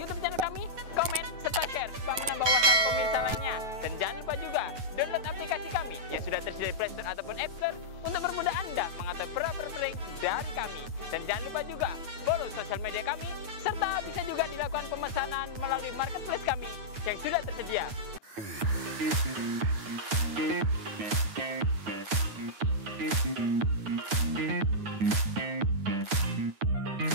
channel kami, komen, serta share supaya menambah wawasan pemirsa lainnya. Dan jangan lupa juga download aplikasi kami yang sudah tersedia di Play Store ataupun App Store untuk mempermudah Anda mengatur perabot-perabot dari kami. Dan jangan lupa juga follow sosial media kami, serta bisa juga dilakukan pemesanan melalui marketplace kami yang sudah tersedia.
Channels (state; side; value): late; left; 9.3 ms